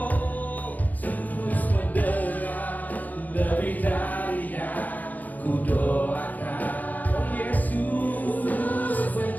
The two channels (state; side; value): late; right; 0.081 ms